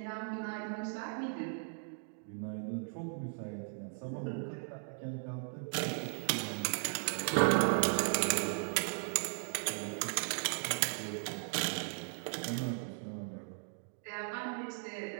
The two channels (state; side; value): silent; left; 53 dB below the other